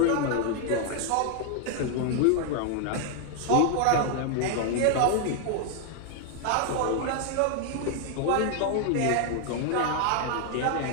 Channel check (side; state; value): both; different; correlation 0.00